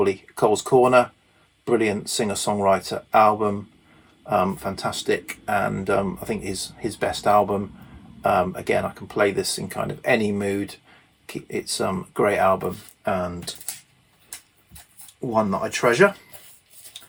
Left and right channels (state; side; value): identical; both; correlation 1.00